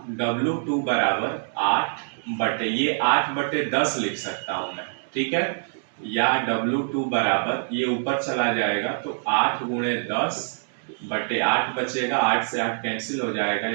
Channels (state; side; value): silent; left; digital silence